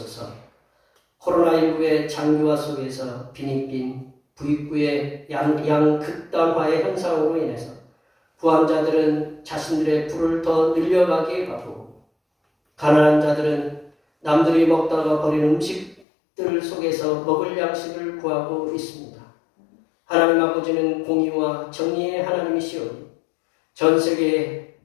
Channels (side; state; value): right; drops out; at 16.0 s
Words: 코로나19의 장기화 속에서 빈익빈 부익부의 양극단화의 현상으로 인해서 부한자들은 자신들의 부를 더 늘려가게 하고, 가난한 자들은 남들이 먹다가 버린 음식들 속에서 먹을 양식을 구하고 있습니다. 하나님 아버지는 공의와 정의의 하나님이시오니 전 세계